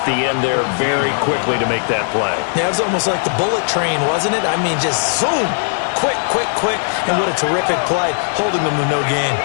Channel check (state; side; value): silent; right; digital silence